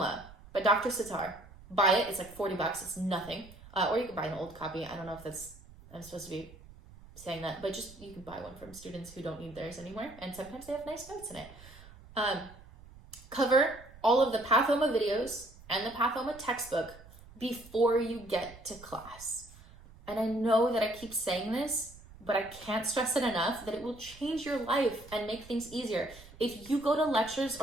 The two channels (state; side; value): noise; right; rumble, 20 dB below the sound